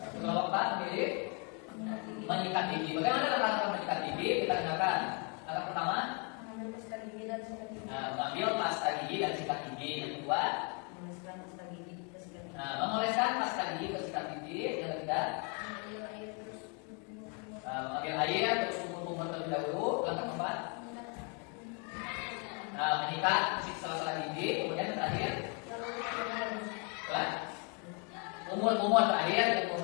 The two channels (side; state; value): right; quieter; 36.0 dB